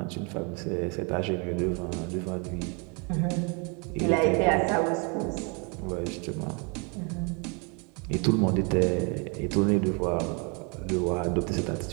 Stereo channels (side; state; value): left; quieter; 33.2 dB